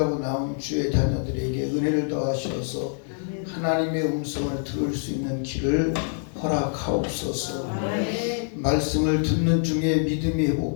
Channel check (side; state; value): right; silent; digital silence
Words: 나온 주의 자녀들에게 은혜를 더하셔서 하나님의 음성을 들을 수 있는 길을 허락하옵소서. 말씀을 듣는 중에 믿음이